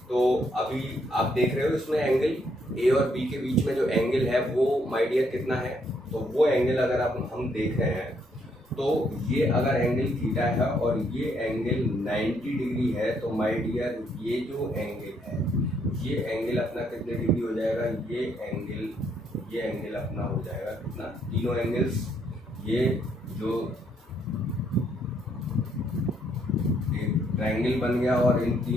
तो अभी आप देख रहे हो इसमें एंगल ए और बी के बीच में जो एंगल है वो माय डियर कितना है। तो वो एंगल अगर हम देख रहे हैं तो ये अगर एंगल थीटा है और ये एंगल 90 डिग्री है, तो माय डियर ये जो एंगल है ये एंगल अपना कितने डिग्री हो जाएगा, ये एंगल अपना हो जाएगा कितना, तीनों एंगल्स, ये जो एक ट्रायंगल बन गया और इन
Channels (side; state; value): both; normal; correlation 0.71